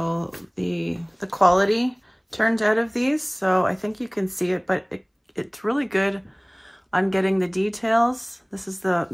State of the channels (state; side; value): identical; both; correlation 1.00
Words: the quality turned out of these. So I think you can see it, but it's really good on getting the details. This is